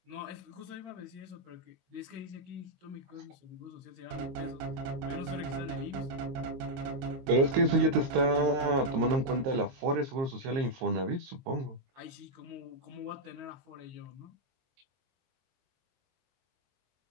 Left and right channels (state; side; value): late; left; 23 ms